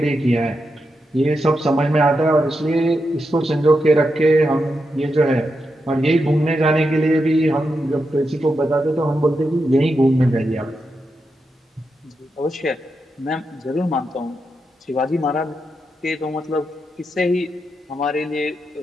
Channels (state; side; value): normal; both; correlation 0.86